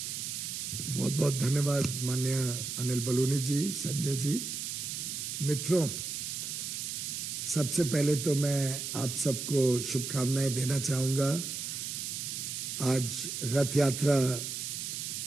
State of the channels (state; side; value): noise; right; hiss, 4 dB below the sound